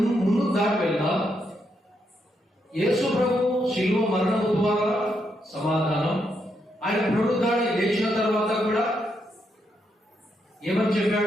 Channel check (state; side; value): normal; both; correlation 0.79